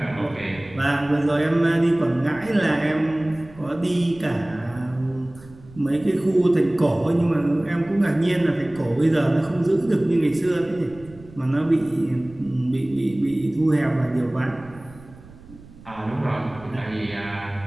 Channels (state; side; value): noise; right; rumble, 21 dB below the sound